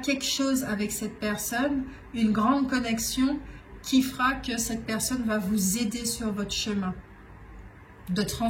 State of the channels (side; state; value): both; identical; correlation 1.00